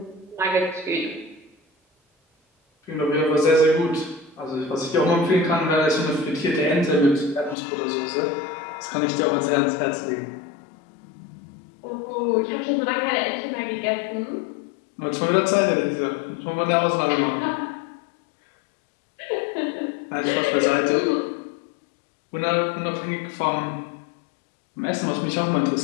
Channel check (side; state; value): right; drops out; at 7.6 s